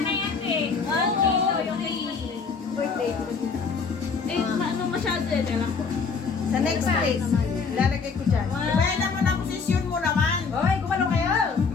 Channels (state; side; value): quieter; right; 5.1 dB